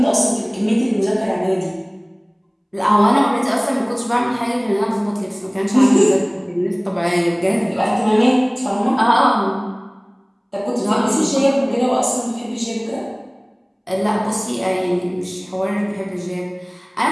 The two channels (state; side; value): identical; both; correlation 1.00